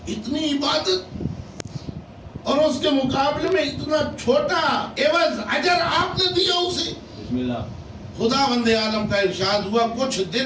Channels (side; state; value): both; identical; correlation 1.00